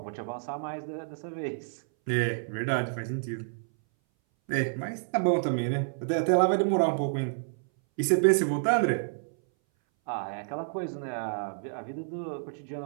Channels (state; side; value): silent; left; 58 dB below the other